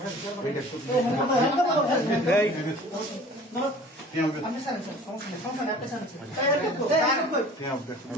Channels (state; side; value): normal; both; correlation 0.46